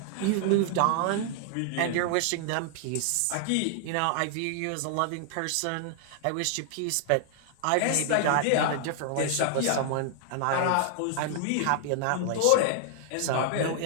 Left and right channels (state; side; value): different; both; correlation -0.01